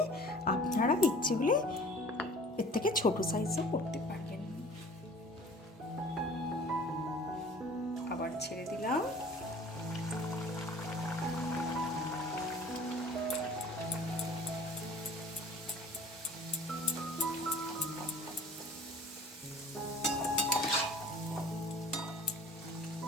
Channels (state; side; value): normal; both; correlation 0.46